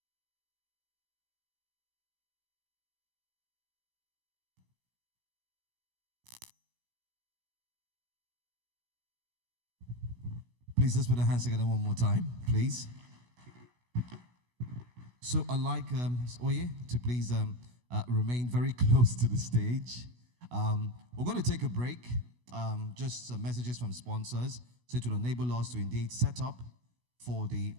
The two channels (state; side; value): late; left; 16 ms